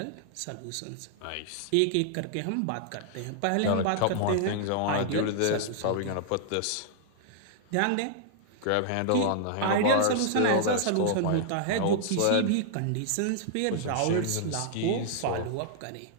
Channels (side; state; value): both; different; correlation -0.01